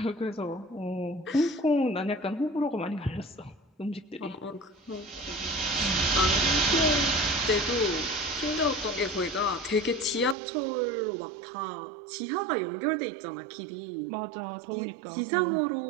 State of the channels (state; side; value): drops out; left; at 10.4 s